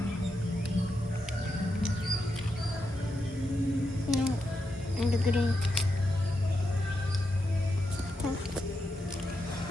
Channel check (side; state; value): both; normal; correlation 0.85